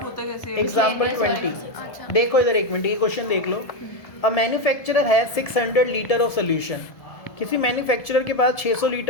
होता कैसे है? एग्जाम्पल 20 अच्छा। देखो इधर, एक मिनट, ये क्वेश्चन देख लो। अ मैन्युफैक्चरर है 600 लीटर ऑफ सोल्यूशन। किसी मैन्युफैक्चरर के पास 600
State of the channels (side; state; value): right; late; 1.7 ms